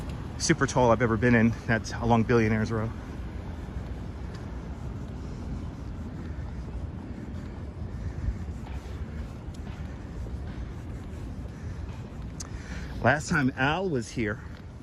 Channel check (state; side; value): identical; both; correlation 1.00